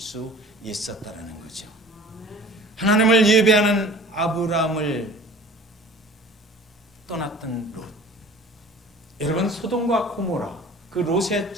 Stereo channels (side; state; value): both; normal; correlation 0.44